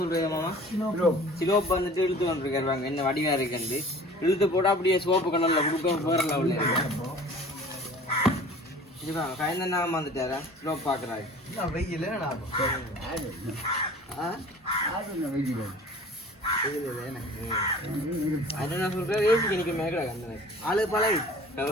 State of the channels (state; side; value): normal; both; correlation 0.45